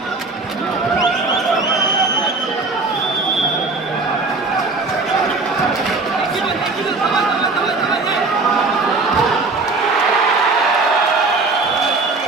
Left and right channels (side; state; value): left; quieter; 3.7 dB